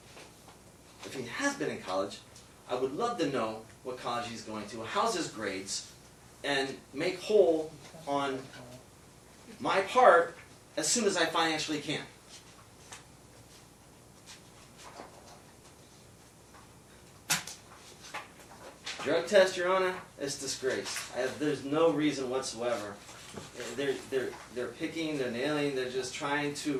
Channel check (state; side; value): identical; both; correlation 1.00